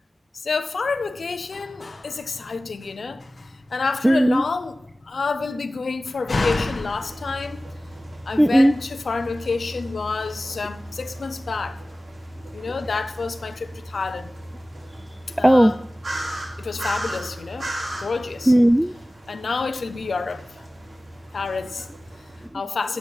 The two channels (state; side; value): normal; both; correlation 0.96